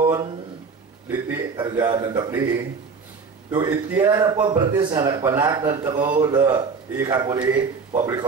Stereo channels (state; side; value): quieter; left; 5.1 dB